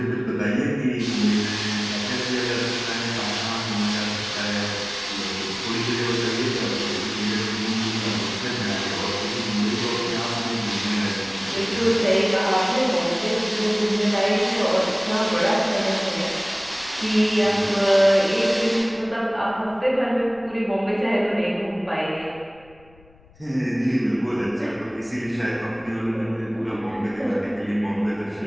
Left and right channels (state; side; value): noise; left; rumble, 27 dB below the sound